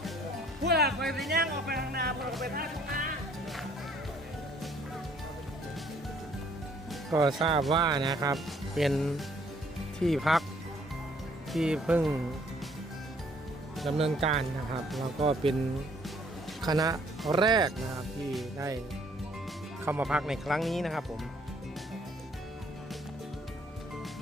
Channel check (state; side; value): normal; both; correlation 0.62